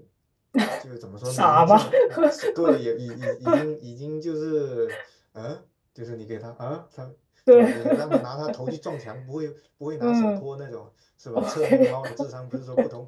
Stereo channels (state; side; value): identical; both; correlation 1.00